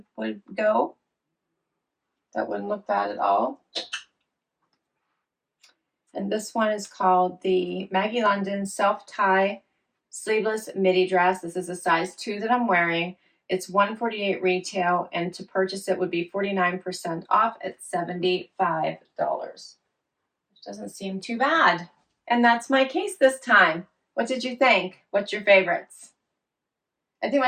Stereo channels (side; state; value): both; identical; correlation 1.00